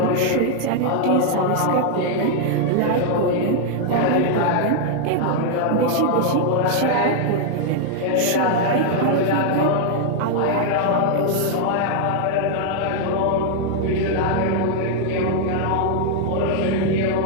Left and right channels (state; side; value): different; both; correlation -0.01